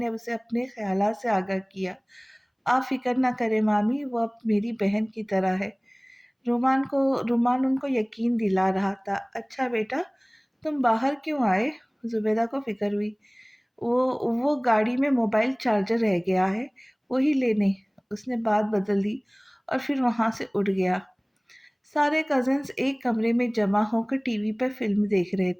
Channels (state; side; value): identical; both; correlation 1.00